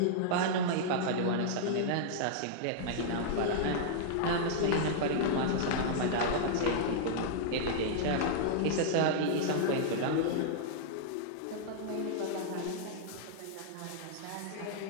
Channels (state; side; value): different; both; correlation -0.02